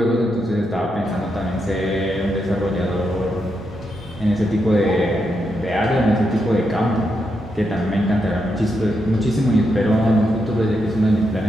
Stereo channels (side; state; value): right; noise; hum, 24 dB below the sound